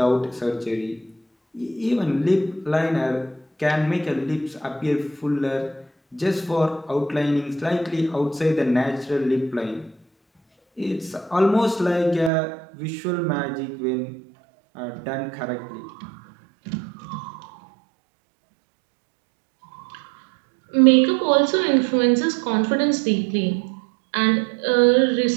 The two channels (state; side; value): drops out; left; at 12.3 s